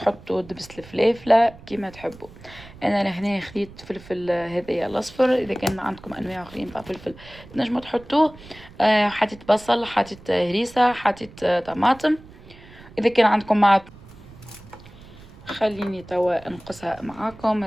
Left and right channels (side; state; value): right; noise; rumble, 20 dB below the sound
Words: دبس الفلافله كيما تحبوا. انا لهنا خديت فلفل هذايا الاصفر. اذا كان عندكم انواع اخرين تاع فلفل تنجموا تحطوه. حطيت بصل، حطيت هريسه، حطيت طماطم. اذا كان عندكم مع خليني توا انقصها معاكم،